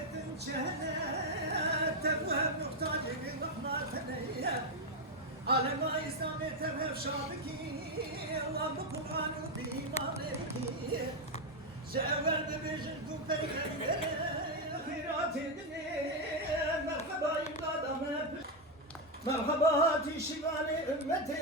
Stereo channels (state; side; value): normal; both; correlation 0.05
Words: جهنة تبوهم نقطان يبين رحمة ثنية على ما إسلامي تبهف شابكي الله بقرآن وبإيمانك جاول ببيجنكم بيغنبري خيرات الدنيا مرحبا يبادة مرحبا هاتي شمالي أمتي